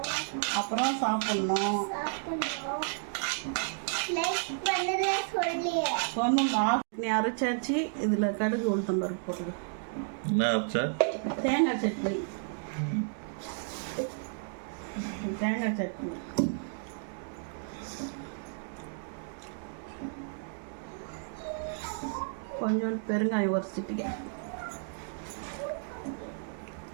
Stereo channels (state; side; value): silent; left; digital silence